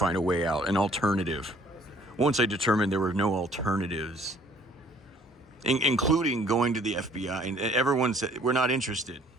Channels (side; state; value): both; normal; correlation 0.58